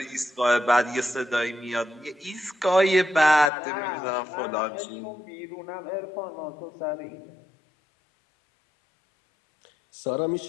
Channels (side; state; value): right; drops out; at 3.5 s